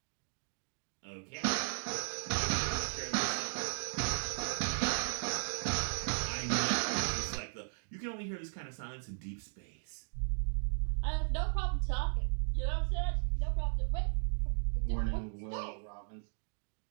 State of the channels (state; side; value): silent; left; digital silence